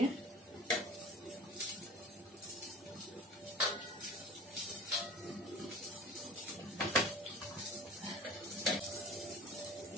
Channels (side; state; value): both; normal; correlation 0.40